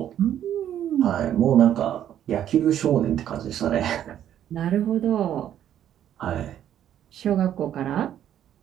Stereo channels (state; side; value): quieter; left; 10.6 dB